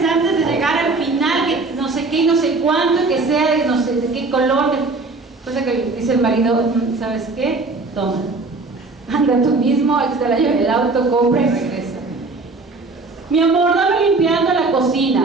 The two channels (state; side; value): quieter; left; 3.6 dB